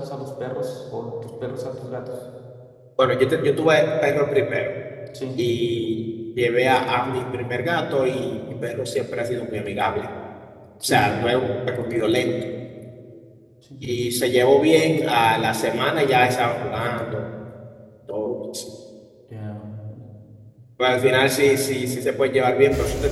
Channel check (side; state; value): both; identical; correlation 1.00